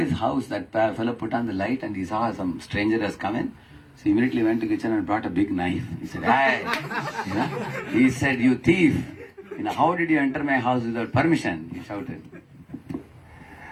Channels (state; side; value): identical; both; correlation 1.00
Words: house. That fellow put on the light and he saw some stranger has come in. So he immediately went to the kitchen and brought a big knife. He said, "Hey," he said, "You thief! How did you enter my house without permission?" He shouted.